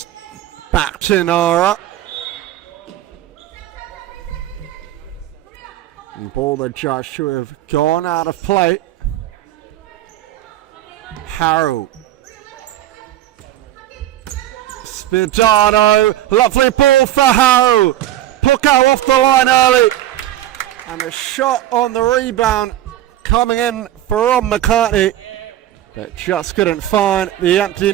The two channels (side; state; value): left; quieter; 13.4 dB